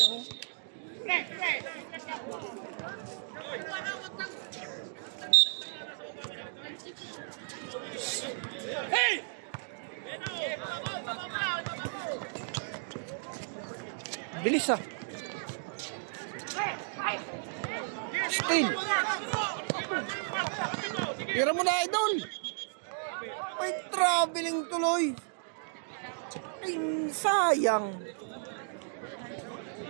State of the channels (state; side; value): silent; left; digital silence